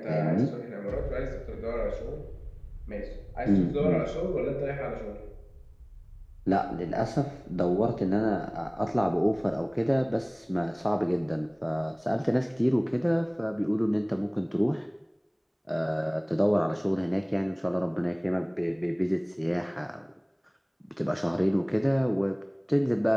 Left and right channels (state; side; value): identical; both; correlation 1.00